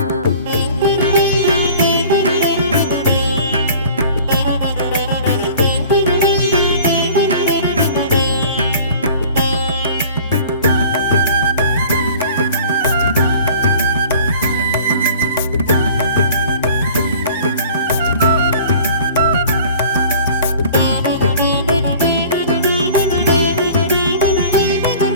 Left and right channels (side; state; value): both; inverted; correlation -0.46